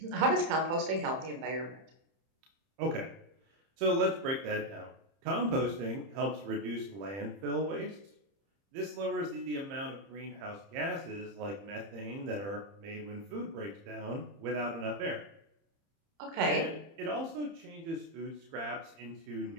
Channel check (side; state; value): left; late; 30 ms